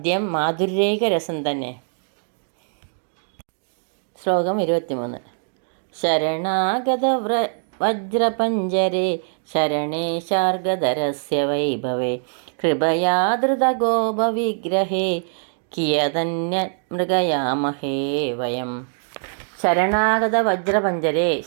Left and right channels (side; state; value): left; silent; digital silence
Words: മാധുര്യൈക രസം തന്നെ. ശ്ലോകം 23. ശരണാഗത വജ്രപഞ്ജരേ ശരണേ ശാർഗധരസ്യ വൈഭവേ കൃപയാ ധൃതഗോപവിഗ്രഹേ കിയതന്യ മൃഗയാമഹേ വയം. ശരണാഗത വജ്രപഞ്ചരേ,